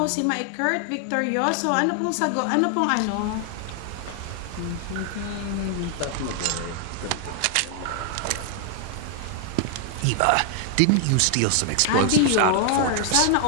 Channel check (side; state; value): both; different; correlation 0.00